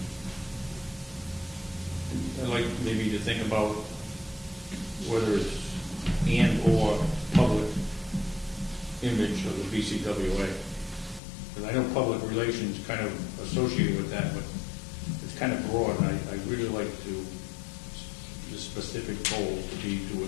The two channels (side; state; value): right; drops out; at 11.2 s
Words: I'd like maybe to think about whether it's and/or public image of the BCWA. Because I know public relations kind of associated with that, but it's kind of broad, and I really like the specific goal to be to